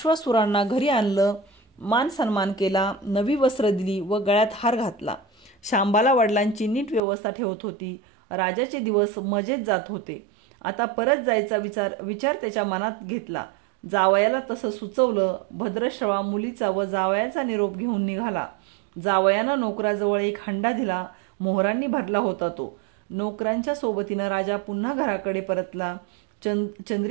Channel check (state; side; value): drops out; left; at 7.0 s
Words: घरी आणलं, मान सन्मान केला, नवी वस्त्र दिली व गळ्यात हार घातला. शांबाला वडिलांची नीट व्यवस्था ठेवत होती. राजाचे दिवस मजेत जात होते. आता परत जायचा विचार त्याच्या मनात घेतला. जावयाला तसं सुचवलं. भद्रश्रवा मुलीचा व जावयाचा निरोप घेऊन निघाला. जावयानं नोकराजवळ एक हंडा दिला. मोहरांनी भरला होता तो. नोकरांच्या सोबतीनं राजा पुन्हा घराकडे परतला.